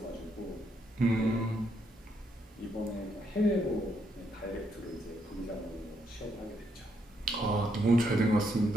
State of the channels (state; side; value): normal; both; correlation 0.76